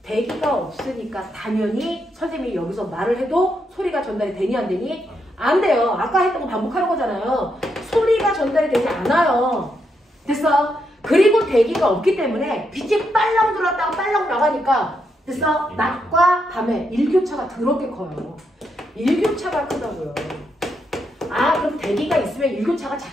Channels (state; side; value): normal; both; correlation 0.80